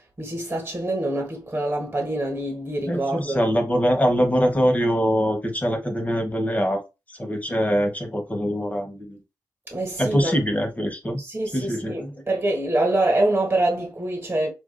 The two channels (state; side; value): normal; both; correlation 0.89